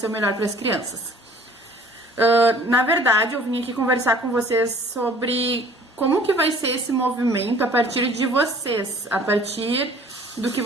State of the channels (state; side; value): normal; both; correlation 0.52